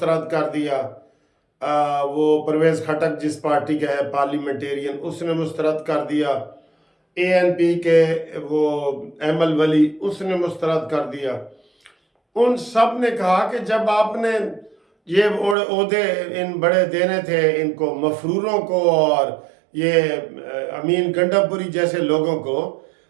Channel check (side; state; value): left; drops out; at 15.6 s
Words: कर दिया, वो परवेज़ खटक जिस पार्टी का है पार्लियामेंटेरियन उसने मुस्तरद कर दिया, ANP के वो एमल वली उसने मुस्तरद कर दिया। उन सब ने कहा कि जब आपने ये ओहदे इन बड़े देने थे इनको मफरूरों को और ये अमीन गंडापुरी जैसे लोगों को,